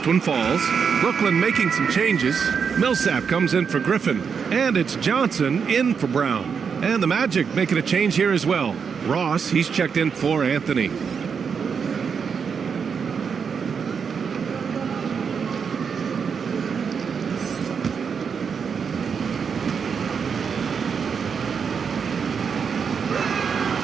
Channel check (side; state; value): left; quieter; 6.3 dB